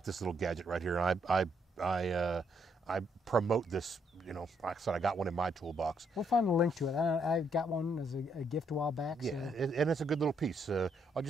this little gadget right here, and I promote this. Like I said, I got one in my toolbox. We'll find a link to it. I got one as a gift a while back. Yeah, so. and it's a good little piece. I'll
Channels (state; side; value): normal; both; correlation 0.73